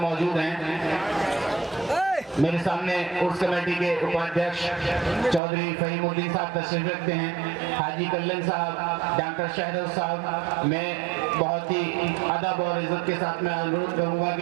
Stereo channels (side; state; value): left; drops out; at 5.4 s